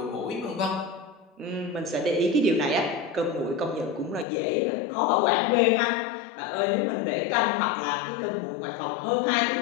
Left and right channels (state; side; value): drops out; right; at 4.2 s